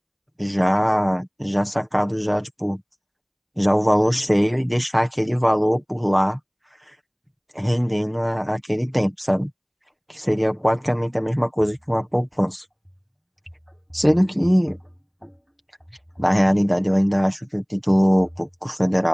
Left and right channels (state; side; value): identical; both; correlation 1.00